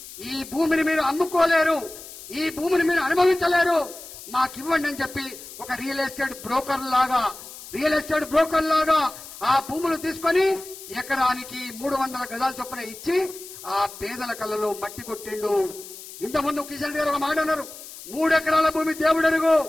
ఈ భూమిని మీరు అమ్ముకోలేరు, ఈ భూమిని మీరు అనుభవించలేరు, మాకివ్వండి అని చెప్పి ఒక రియల్ ఎస్టేట్ బ్రోకర్ లాగా ఆ భూములు తీసుకొని ఎకరానికి 300 గజాల చొప్పున ఇచ్చి ఆ పేదల కళ్ళలో మట్టి కొట్టిండు. ఇంతకుముందు కిషన్ గారు ఒక మాట అన్నారు, 3 ఎకరాల భూమి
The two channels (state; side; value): noise; left; hiss, 15 dB below the sound